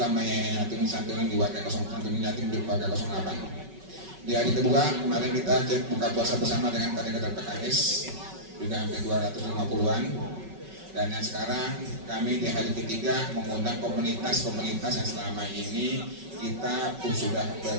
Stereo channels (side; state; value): left; late; 5.3 ms